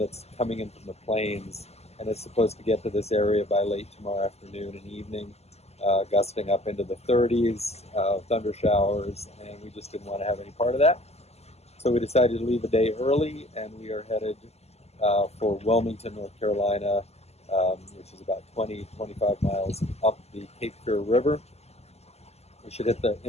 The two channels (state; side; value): late; right; 0.30 ms